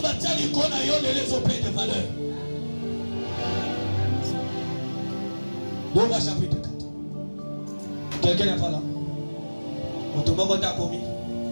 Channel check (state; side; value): inverted; both; correlation -1.00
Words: t'aider qu'on a eu les opés de valeur. 2 voix chapitre 4. Quelqu'un n'est pas là. On te demande à commis.